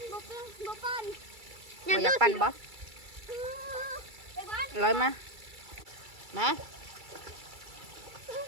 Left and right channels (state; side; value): late; left; 2.3 ms